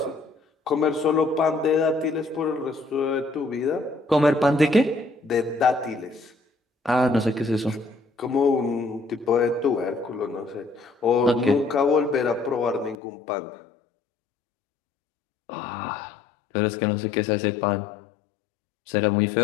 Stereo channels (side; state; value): right; drops out; at 13.0 s